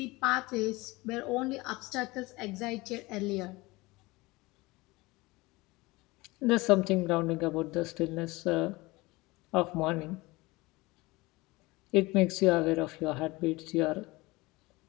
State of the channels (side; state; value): right; quieter; 22.1 dB